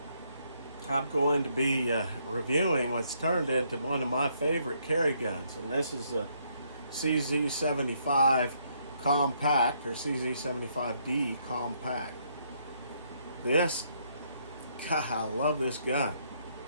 I'm going to be reviewing what's turned into one of my favorite carry guns. And this is a CZ75 Compact, or CZ75D Compact. This, God, I love this gun.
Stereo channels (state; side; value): inverted; both; correlation -0.72